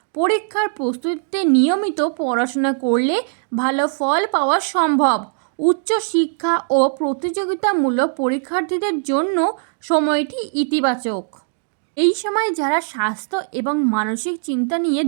পরীক্ষার প্রস্তুতিতে নিয়মিত পড়াশোনা করলে ভালো ফল পাওয়া সম্ভব। উচ্চশিক্ষা ও প্রতিযোগিতামূলক পরীক্ষার্থীদের জন্য সময়টি ইতিবাচক। এই সময় যারা স্বাস্থ্য এবং মানসিক চিন্তা নিয়ে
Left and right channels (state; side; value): silent; left; digital silence